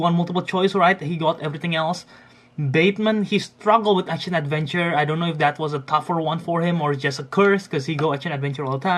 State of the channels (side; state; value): both; identical; correlation 1.00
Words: multiple choice, right? He got everything else. Bateman, he struggled with action adventure. I don't know if that was a tougher one for him or just a curse because he go action adventure all the